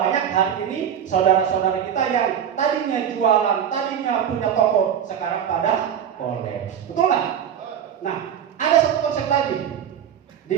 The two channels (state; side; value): quieter; left; 9.0 dB